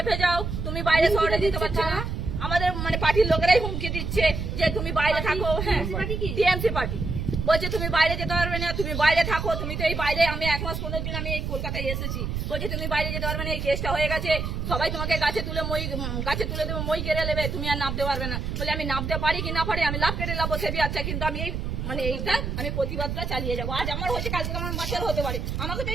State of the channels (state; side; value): noise; right; rumble, 3 dB below the sound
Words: যাও, তুমি বাইরে শহরে দিতে পারছো না। আমাদের মানে পার্টির লোকেরাই হুমকি দিচ্ছে যে তুমি বাইরে থাকো। হ্যাঁ, টিএমসি পার্টি বলছে তুমি বাইরে যেতে পারবে না, তুমি বাইরে থাকো, তুমি তো এই বাইরে, আমি 1 মাস 15 দিন আমি এই কলকাতায় এসেছি, বলছে তুমি বাইরে যেতে পারবে না, এই কেসটা হয়ে গেছে, সবাই তোমাকে গাছে তুলে দেবে, মই কেড়ে নেবে, তুমি আর নামতে পারবে না। বলে আমি নামতে পারি কি না পারি, আমি লাভ কেটে লাভ বসে আচ্ছা, কিন্তু আমি এই মানে এইটা আমি প্রতিবাদটা চালিয়ে যাবো। আজ আমার হচ্ছে, কালকে আমার বাচ্চার হতে পারে, আমাকে তো